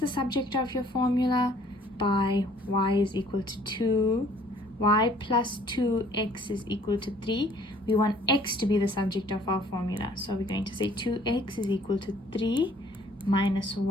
subject of your formula by y is equal to 2, y plus 2x is equal to 3. We want x to be the subject of our formula. So we're going to say 2x is equal to 3 minus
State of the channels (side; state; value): both; normal; correlation 0.57